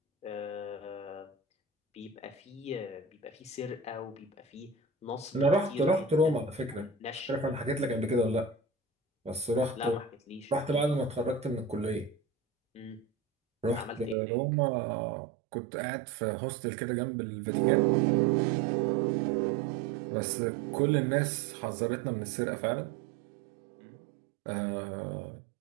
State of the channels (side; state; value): left; drops out; at 14.2 s